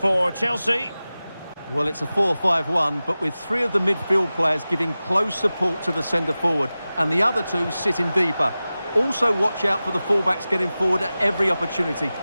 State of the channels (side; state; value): both; inverted; correlation -0.96